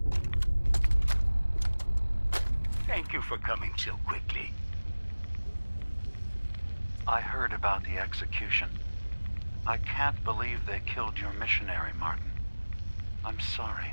Thank you for coming so quickly. I heard about the execution. I can't believe they killed your missionary, Martin. I'm sorry.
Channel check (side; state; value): both; inverted; correlation -1.00